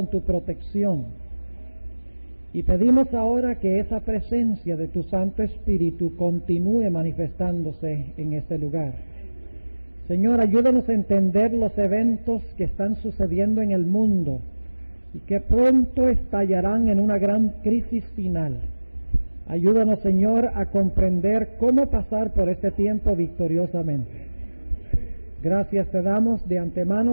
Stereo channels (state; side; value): inverted; both; correlation -1.00